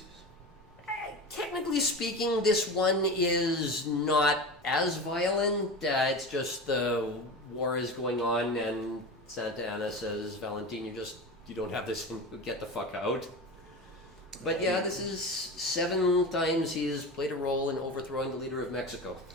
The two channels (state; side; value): normal; both; correlation 0.28